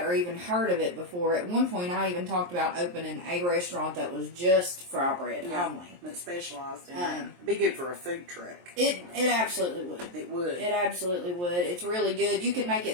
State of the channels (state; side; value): late; left; 23 ms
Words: or even heard of it before. At one point, I even talked about opening a restaurant that was just fry bread only. That specialized in that. It'd be good for a food truck. It absolutely would. It would. It absolutely would. It's really good. You can make